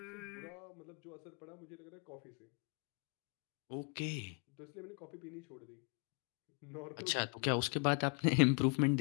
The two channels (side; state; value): right; quieter; 37.4 dB